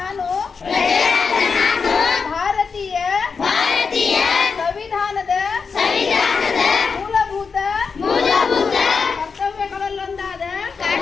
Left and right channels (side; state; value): right; quieter; 5.3 dB